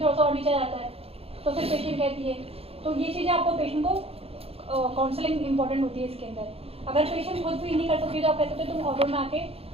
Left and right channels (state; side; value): late; left; 0.28 ms